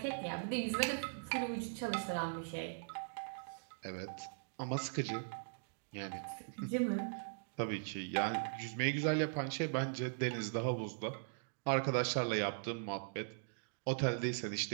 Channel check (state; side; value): silent; left; digital silence